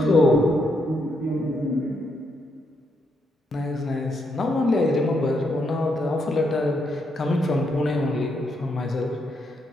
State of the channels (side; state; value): both; normal; correlation 0.78